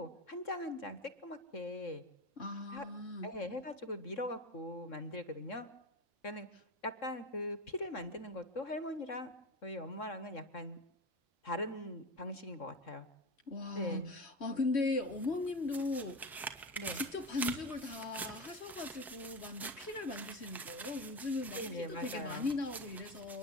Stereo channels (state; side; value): normal; both; correlation 0.23